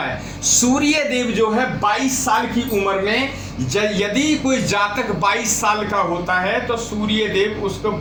है। सूर्य देव जो है 22 साल की उम्र में, यदि कोई जातक 22 साल का होता है तो सूर्य देव उसको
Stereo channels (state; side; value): identical; both; correlation 1.00